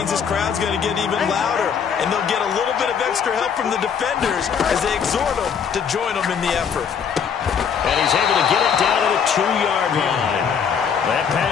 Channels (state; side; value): quieter; right; 7.1 dB